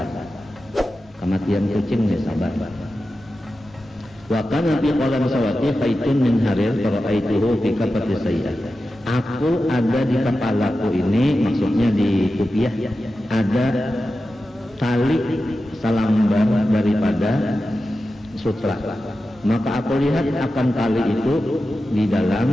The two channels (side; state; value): both; normal; correlation 0.92